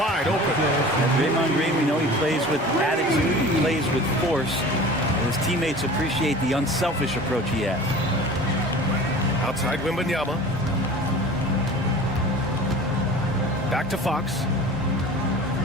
open. And Draymond Green, we know he plays with attitude, he plays with force, and his teammates appreciate the unselfish approach he has. Outside Wembanyama. Back to Fox.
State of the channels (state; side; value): normal; both; correlation 0.40